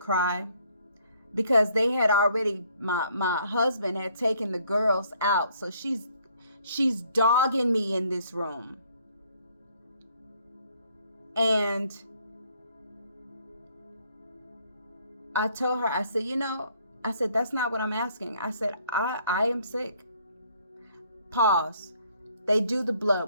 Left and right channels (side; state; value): both; inverted; correlation -0.65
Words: Because they had already, my husband had taken the girls out. So she's dogging me in this room. And I told her, I said, that's not what I'm asking. I said, I am sick. Pause. They do the